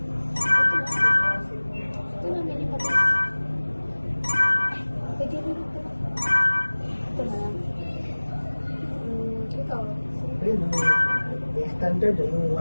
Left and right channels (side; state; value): both; inverted; correlation -1.00